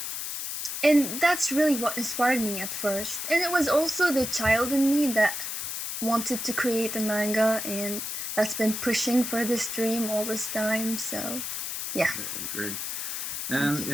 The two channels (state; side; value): noise; left; hiss, 4 dB below the sound